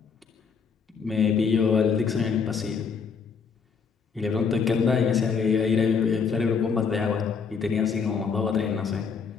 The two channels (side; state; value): right; quieter; 5.8 dB